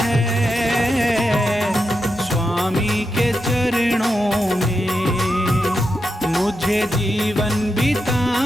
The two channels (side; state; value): both; normal; correlation 0.87